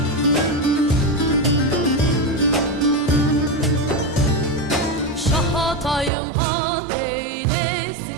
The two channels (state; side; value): drops out; left; at 6.1 s